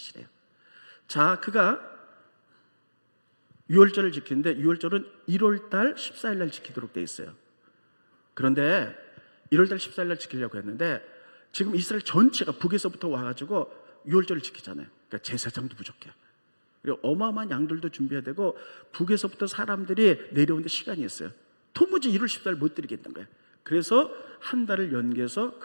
자, 그가 유월절을 지키는데 유월절은 1월달 14일 날 지키도록 돼 있어요. 그런데 1월달 14일 날 지키려고 했는데 지금 이스라엘 전체가 북에서부터 와가지고 유월절을 지키잖아요. 그러니까 제사장도 부족해요. 그리고 어마어마한 양들도 준비해야 되고 북에서부터 사람들이 내려오는데 시간이 있어요. 도무지 1월 14일 못 드리겠다는 거예요. 그래서 한 달을 연기해서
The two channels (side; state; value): both; inverted; correlation -1.00